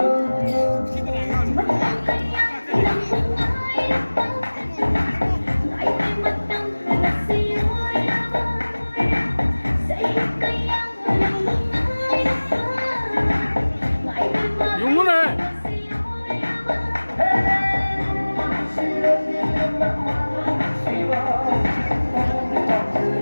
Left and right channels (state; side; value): inverted; both; correlation -1.00